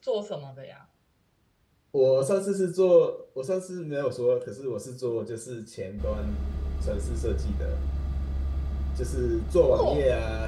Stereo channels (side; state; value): both; identical; correlation 1.00